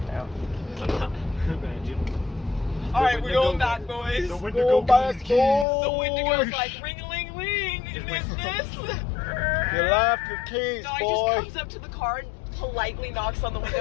No. Imagine. Alright, we're going back, boys. The Wendigo got his keys. The Wendigo's like, ring-a-ling-ling, is this? You left your keys, No, I boy. just comes up to the car and politely knocks on the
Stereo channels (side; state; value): right; drops out; at 5.7 s